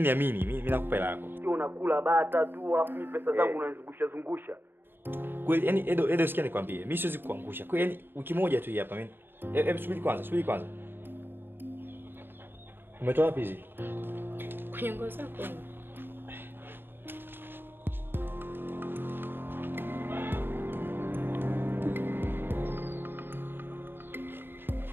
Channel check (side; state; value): left; late; 0.10 ms